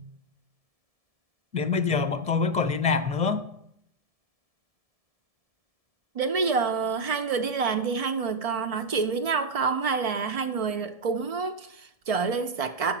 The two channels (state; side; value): late; left; 1.7 ms